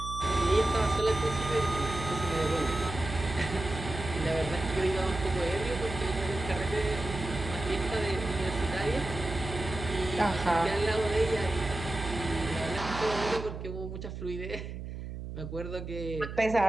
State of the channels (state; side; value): noise; right; hum, 8 dB below the sound